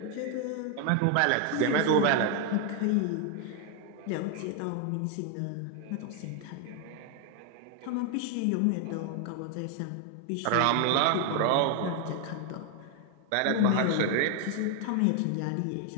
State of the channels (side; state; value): both; different; correlation 0.00